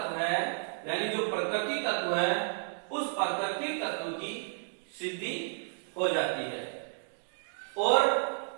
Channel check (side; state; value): left; silent; digital silence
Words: है यानी जो प्रकृति तत्व है, उस प्रकृति तत्व की सिद्धि हो जाती है। और